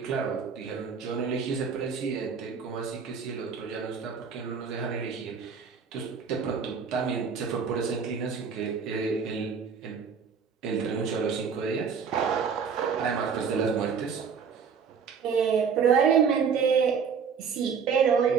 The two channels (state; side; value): quieter; left; 6.3 dB